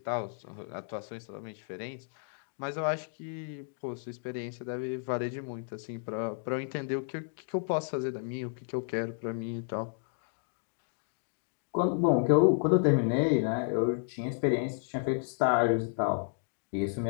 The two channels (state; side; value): silent; right; digital silence